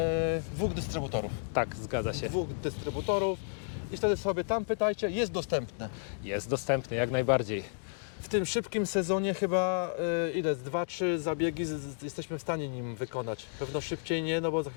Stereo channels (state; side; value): silent; right; digital silence